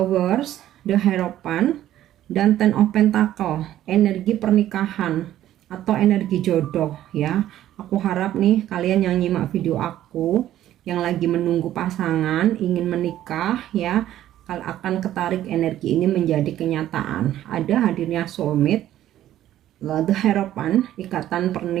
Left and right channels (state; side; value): quieter; left; 12.7 dB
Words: The Hierophant, dan Ten of Pentacle, energi pernikahan atau energi jodoh ya. Aku harap nih kalian yang nyimak video aku yang lagi menunggu pasangan, ingin menikah ya, akan ketarik energi ini menjadi kenyataan. Ada hadirnya soulmate, The Hierophant, ikatan